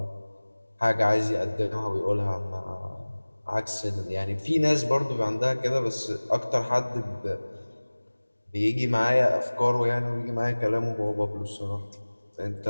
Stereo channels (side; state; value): both; inverted; correlation -1.00